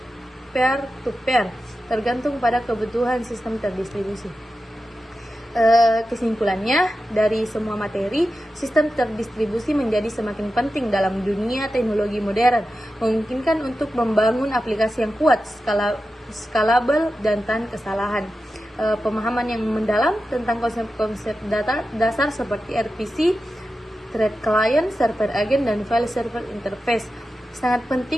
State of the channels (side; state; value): both; normal; correlation 0.91